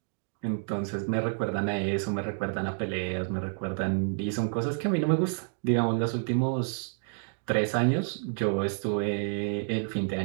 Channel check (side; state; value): left; silent; digital silence